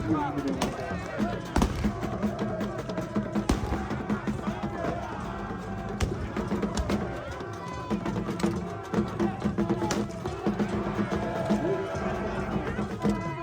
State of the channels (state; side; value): identical; both; correlation 1.00